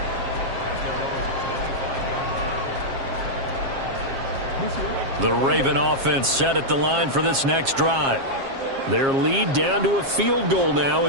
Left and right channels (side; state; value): left; late; 7.4 ms